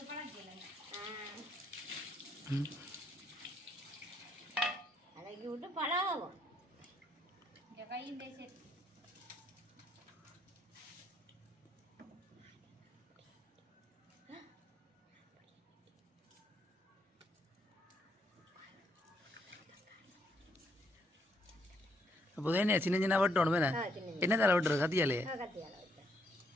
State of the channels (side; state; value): both; normal; correlation 0.73